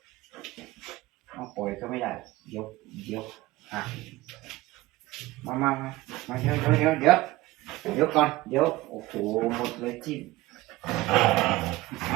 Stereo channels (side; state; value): left; quieter; 18.6 dB